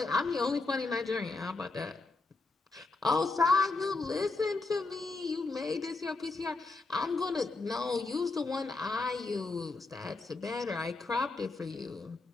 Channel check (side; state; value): right; quieter; 3.6 dB